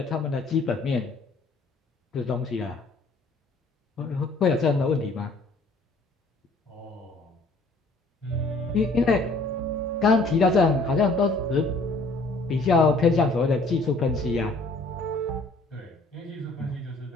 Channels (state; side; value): quieter; right; 3.1 dB